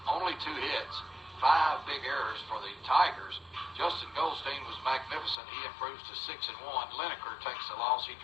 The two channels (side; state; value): right; drops out; at 5.4 s